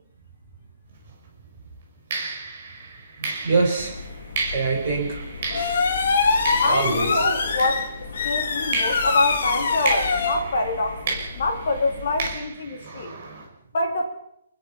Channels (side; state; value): both; inverted; correlation -0.71